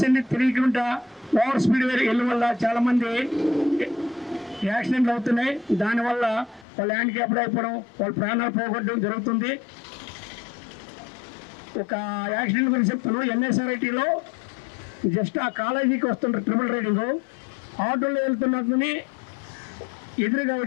ఏంటి తెలియకుండా ఓవర్ స్పీడ్ వెళ్ళడం వల్ల చాలామంది యాక్సిడెంట్లు అవుతున్నాయి. దానివల్ల వాళ్ళు హ్యాండిక్యాప్డ్ అయిపోవడం, వాళ్ళ ప్రాణాలు పోగొట్టడం జరుగుతుంది. ఒక యాక్సిడెంట్ గురించి చెప్తాను. ఎన్ఎస్ఆర్ఐటీలో జస్ట్ ఆ కాలేజీకి వస్తుంటారు ట్రిపుల్ రైడింగ్, ఆటోలో వెళ్తున్నదని ఎదురుగా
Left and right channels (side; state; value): right; drops out; at 6.7 s